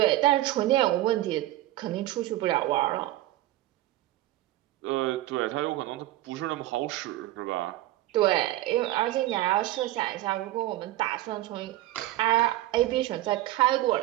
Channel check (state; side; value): quieter; left; 15.9 dB